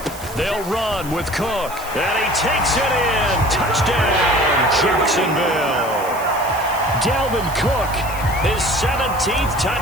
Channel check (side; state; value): right; noise; hiss, 15 dB below the sound